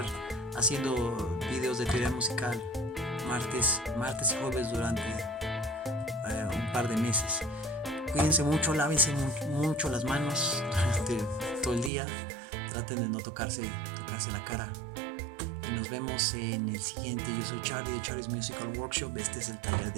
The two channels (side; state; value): left; drops out; at 11.9 s